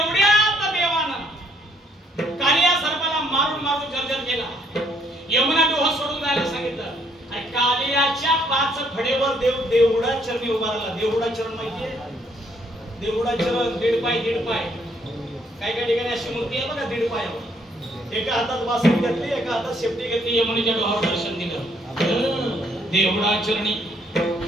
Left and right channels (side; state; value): both; normal; correlation 0.68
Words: देवानं कालिया सर्पाला मारून मारून जर्जर केला. यमुना डोह सोडून जायला सांगितलं. आणि कालियाच्या 5 फडेवर देव देवडा चरणी उभा राहिला. देवडा चरण माहितीये? देवडा चरण 1.5 पाय 1.5 पाय. काय काय ठिकाणी अशी मूर्ती आहे बघा 1.5 पायावर. एका हातात वासरी घेतली, एका हातात शेपटी घेतली. यमुनेच्या डोहावर दर्शन दिलं. देवडा चरणी